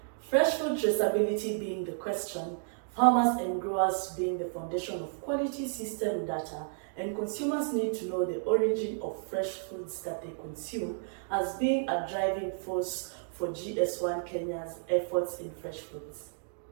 Fresh food traceability being the question, farmers and growers being the foundation of quality system data, and consumers need to know the origin of fresh foods that they consume as being a driving force for GS1 Kenya's efforts in fresh foods.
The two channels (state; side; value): silent; left; digital silence